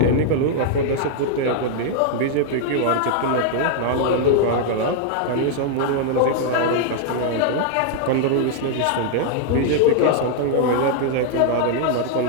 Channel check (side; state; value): both; different; correlation 0.00